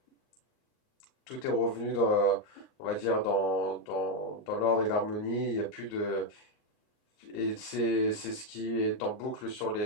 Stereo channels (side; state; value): right; late; 38 ms